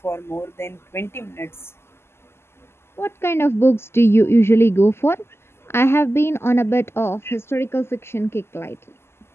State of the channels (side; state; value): right; late; 0.12 ms